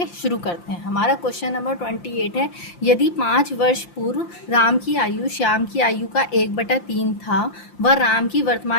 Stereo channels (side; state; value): right; late; 5.8 ms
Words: शुरू करते हैं। हमारा क्वेश्चन नंबर 28 है, यदि 5 वर्ष पूर्व राम की आयु श्याम की आयु का 1/3 था व राम की